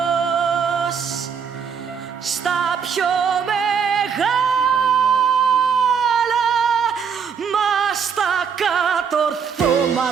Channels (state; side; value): quieter; left; 6.7 dB